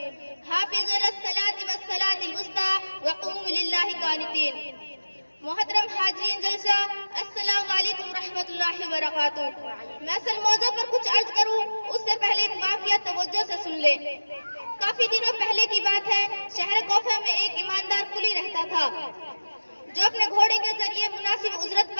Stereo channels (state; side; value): inverted; both; correlation -1.00